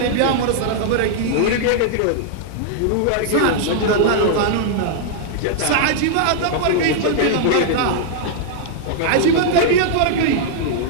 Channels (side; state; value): both; different; correlation -0.01